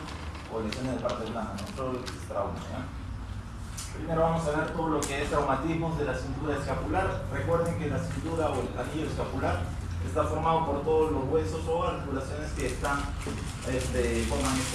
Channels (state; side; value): identical; both; correlation 1.00